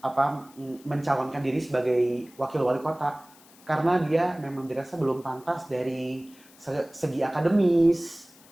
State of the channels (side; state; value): left; noise; hiss, 25 dB below the sound